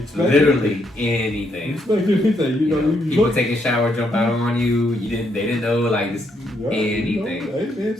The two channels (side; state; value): both; normal; correlation 0.75